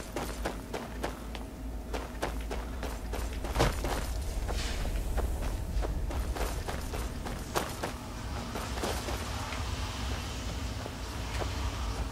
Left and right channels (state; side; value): identical; both; correlation 1.00